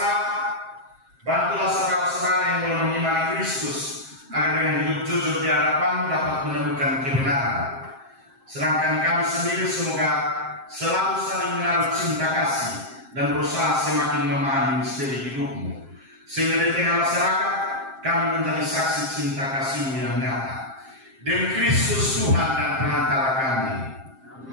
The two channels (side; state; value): left; late; 7.5 ms